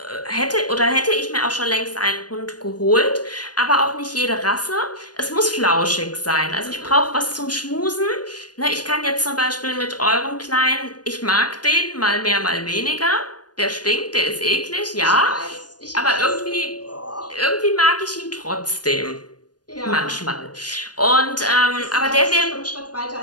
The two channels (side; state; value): right; late; 0.69 ms